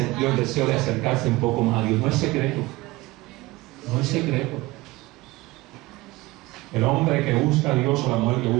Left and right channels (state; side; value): quieter; left; 20.5 dB